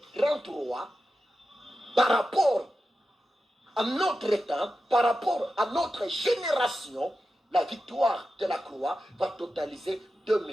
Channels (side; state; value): both; normal; correlation 0.91